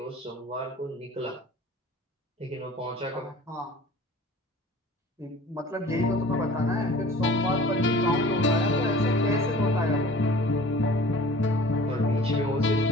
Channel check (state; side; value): normal; both; correlation 0.46